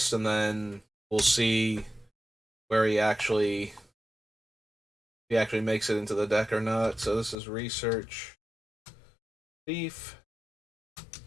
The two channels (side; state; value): right; drops out; at 7.4 s